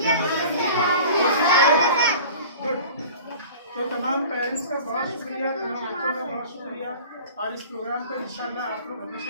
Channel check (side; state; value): both; inverted; correlation -0.41